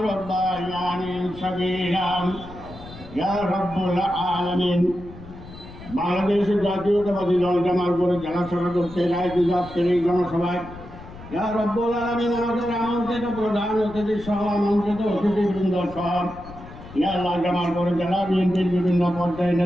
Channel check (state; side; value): noise; left; rumble, 16 dB below the sound